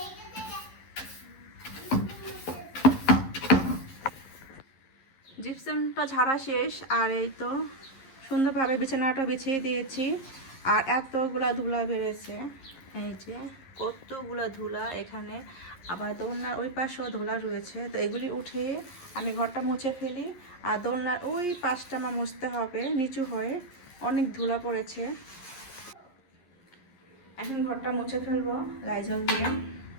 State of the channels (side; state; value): right; late; 11 ms